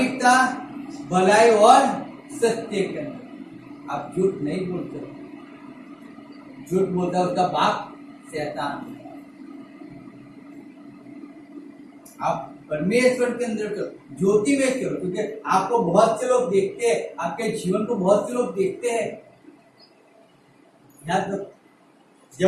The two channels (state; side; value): identical; both; correlation 1.00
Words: भलाई और सत्य के अंदर। आप झूठ नहीं बोलते, झूठ बोलता है उसका बाप शैतान। आप परमेश्वर के अंदर चलो, ज्योति में चलो, क्योंकि आपको बहुत से लोग देखते हैं, आपके जीवन को बहुत से लोग देखते हैं। याद रखो,